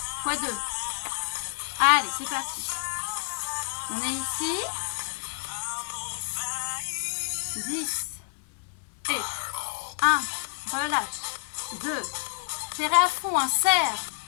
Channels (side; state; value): right; silent; 59 dB below the other